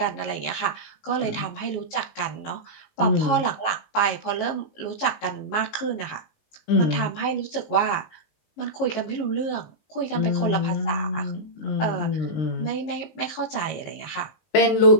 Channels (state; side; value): late; right; 18 ms